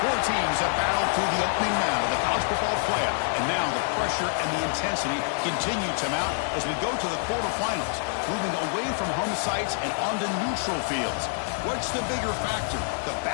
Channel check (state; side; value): silent; right; digital silence